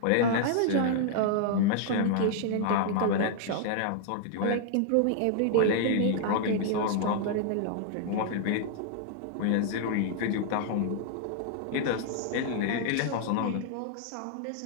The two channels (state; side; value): different; both; correlation -0.01